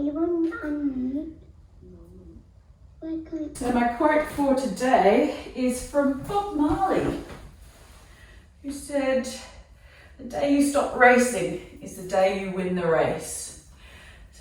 So my quote for today is from Bob Marley, who said, "The day you stop racing is the day you win the race."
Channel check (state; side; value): identical; both; correlation 1.00